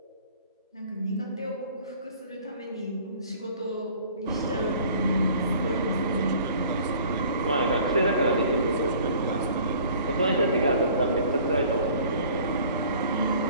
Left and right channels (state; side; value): inverted; both; correlation -0.51